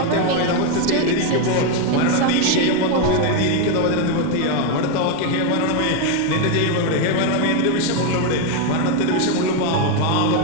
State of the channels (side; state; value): both; different; correlation 0.02